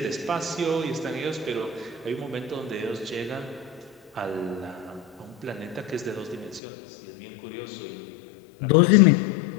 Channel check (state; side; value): drops out; right; at 6.6 s